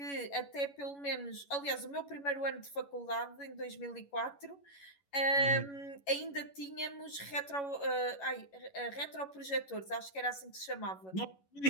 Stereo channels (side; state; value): right; late; 11 ms